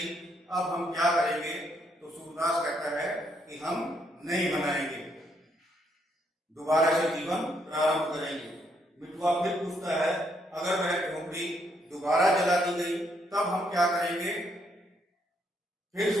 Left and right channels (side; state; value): both; normal; correlation 0.74